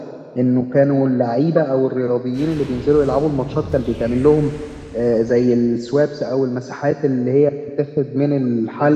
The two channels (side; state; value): both; identical; correlation 1.00